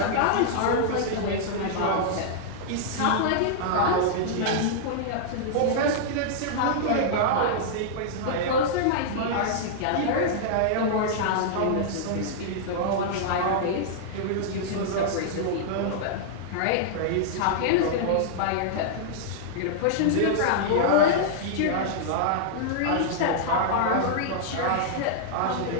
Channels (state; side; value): different; both; correlation -0.01